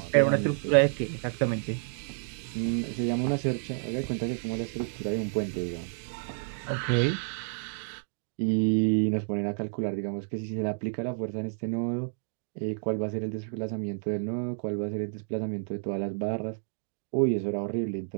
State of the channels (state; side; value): silent; left; 58 dB below the other